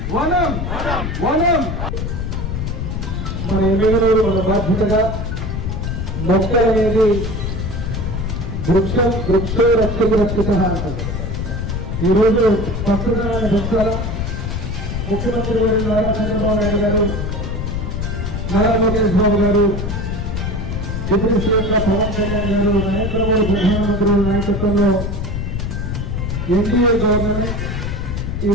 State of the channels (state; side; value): noise; left; rumble, 3 dB below the sound